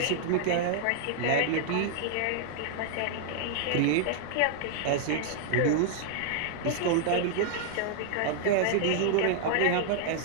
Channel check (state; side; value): different; both; correlation -0.01